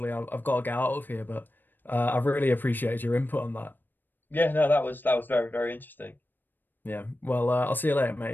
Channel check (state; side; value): late; right; 0.092 ms